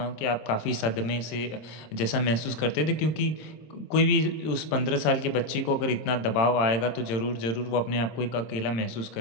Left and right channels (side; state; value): right; late; 26 ms